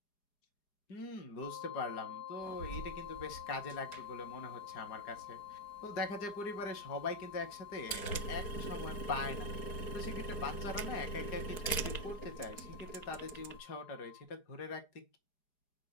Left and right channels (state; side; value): late; right; 4.8 ms